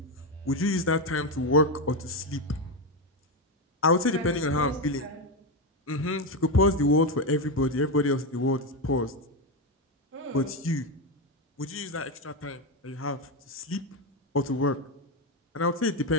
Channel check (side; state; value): both; normal; correlation 0.10